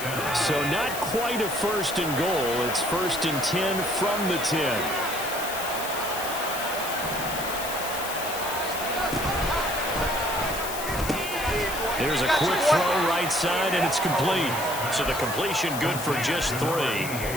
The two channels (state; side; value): noise; left; hiss, 8 dB below the sound